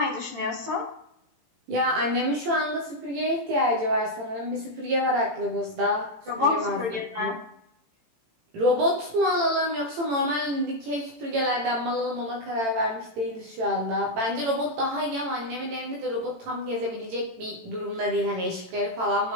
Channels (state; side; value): late; left; 18 ms